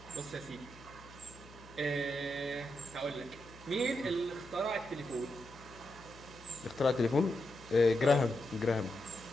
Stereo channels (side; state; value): left; noise; hum, 20 dB below the sound